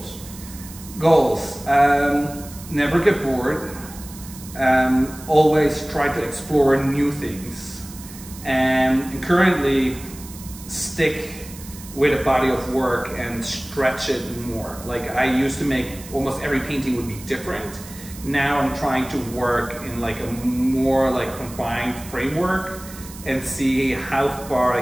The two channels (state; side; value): noise; right; hiss, 16 dB below the sound